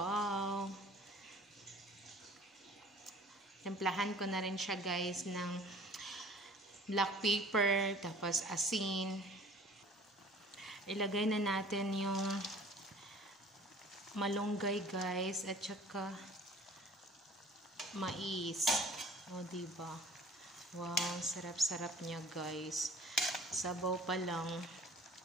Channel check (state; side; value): normal; both; correlation 0.49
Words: Templahan ko na rin siya guys ng black pepper, tapos asin. Ilagay na natin yung malunggay guys at saka mais. O diba? Wow, sarap-sarap niya guys. Sabaw pa lang,